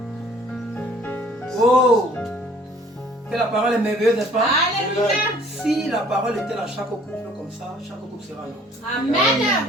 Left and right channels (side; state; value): both; normal; correlation 0.55